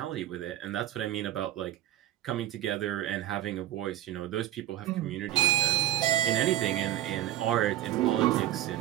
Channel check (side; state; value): left; quieter; 13.3 dB